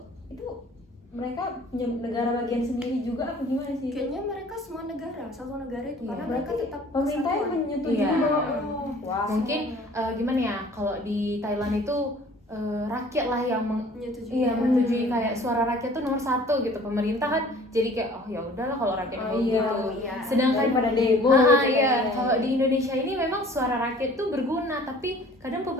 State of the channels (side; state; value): both; normal; correlation 0.51